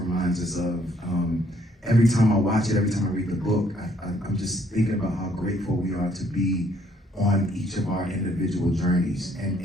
us of. Every time I watch it, every time I read the book, I'm just thinking about how grateful we are to be on each of our individual journeys. And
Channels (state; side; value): normal; both; correlation 0.66